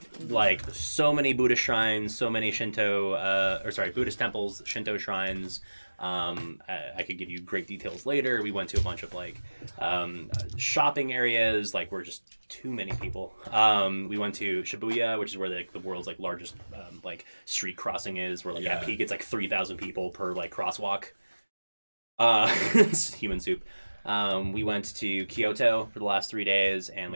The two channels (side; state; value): both; inverted; correlation -1.00